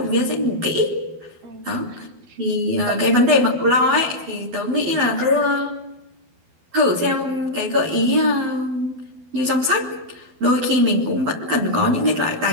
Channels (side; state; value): left; late; 12 ms